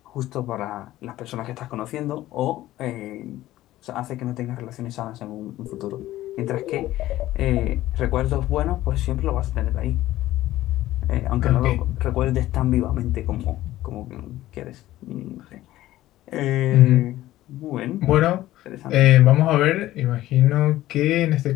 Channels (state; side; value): quieter; right; 15.3 dB